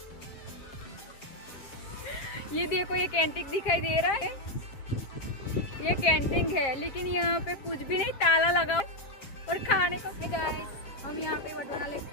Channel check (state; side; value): late; right; 7.3 ms